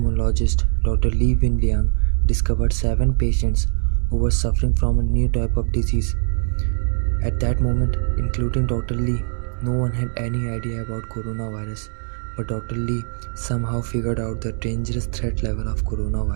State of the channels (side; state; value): left; silent; 64 dB below the other